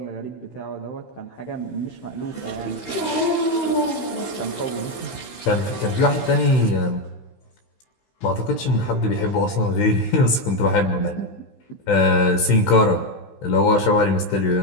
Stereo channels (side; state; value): right; late; 16 ms